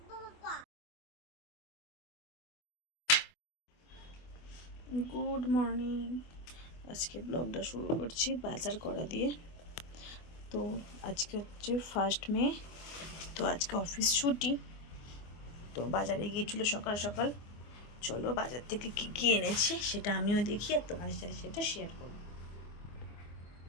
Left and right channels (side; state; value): right; late; 24 ms